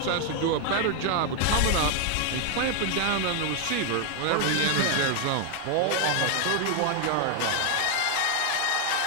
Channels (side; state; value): both; different; correlation 0.00